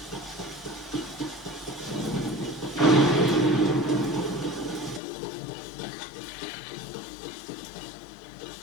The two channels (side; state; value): right; drops out; at 5.0 s